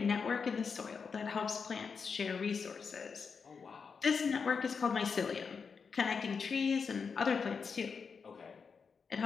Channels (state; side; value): quieter; right; 5.6 dB